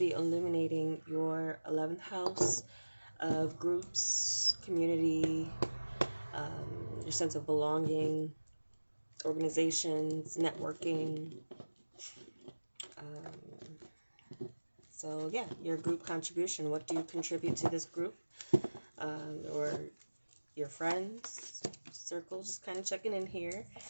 illuminating your 11th house of groups, community, your sense of belonging, organizations, networking. So yeah, your group contribution. What do you contribute to this group? Or your friends circle, just kind of checking in here.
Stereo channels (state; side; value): inverted; both; correlation -1.00